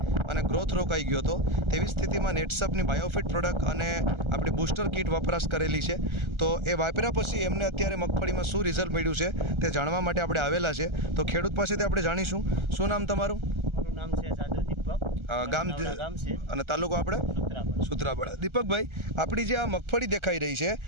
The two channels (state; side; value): late; left; 1.4 ms